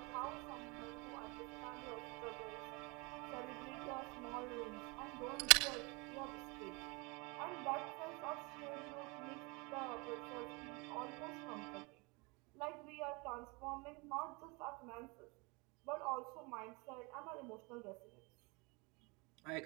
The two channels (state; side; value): quieter; left; 28.1 dB